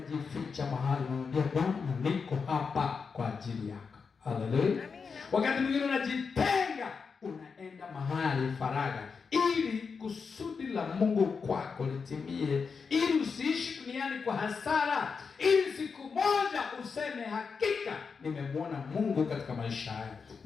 mahali, unamwambia Bwana, niko hapa kwa ajili yako. Haleluya. Wakati mwingine unajitenga, unaenda mahali faragha, ili kusudi la Mungu kwako litimie, ili usiishi duniani kwa hasara, ili siku moja useme hakika nimemwona Mungu katika maisha haya,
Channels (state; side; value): quieter; right; 5.4 dB